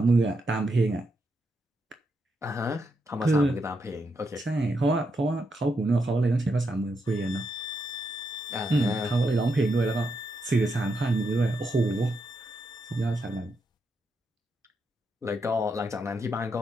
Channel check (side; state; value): both; normal; correlation 0.82